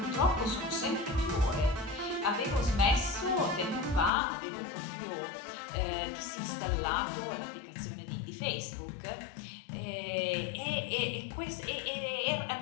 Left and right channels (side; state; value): right; drops out; at 4.1 s